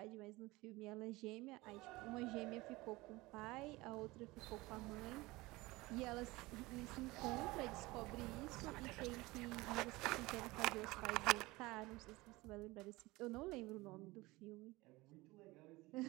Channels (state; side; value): quieter; left; 21.1 dB